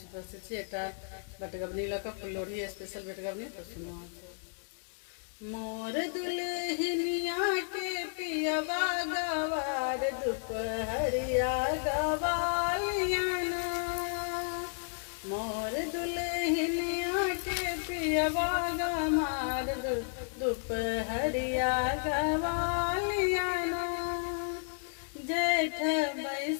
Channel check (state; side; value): silent; right; digital silence